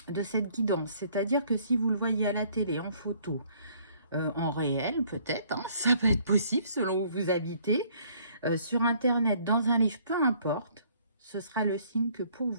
de cette guidance. C'est-à-dire que si vous le voyez à la télé, en photo, en réel peut-être, hein, ça peut être possible selon où vous habitez, sur Internet, dans un livre, peu importe, ce sera le signe que pour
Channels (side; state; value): both; inverted; correlation -0.61